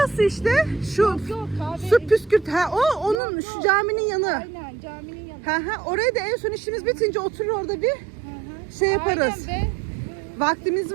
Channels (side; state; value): left; drops out; at 3.2 s